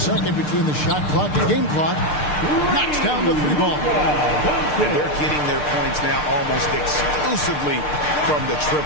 between the shot clock and game clock. Knocks down the three ball. And they're getting their points now almost exclusively from the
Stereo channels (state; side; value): late; right; 6.6 ms